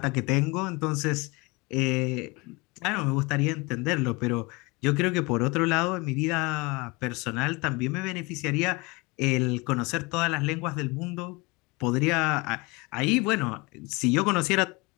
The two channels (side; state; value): right; quieter; 26.0 dB